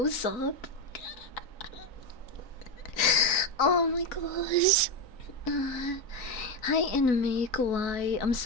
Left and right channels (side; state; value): right; late; 3.9 ms